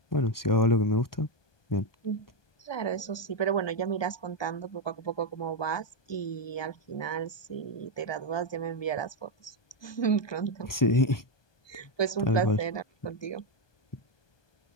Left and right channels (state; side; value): late; right; 1.2 ms